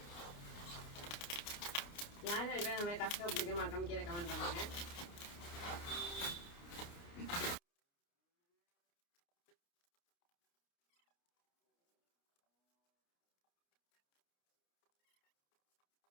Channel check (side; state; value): right; late; 29 ms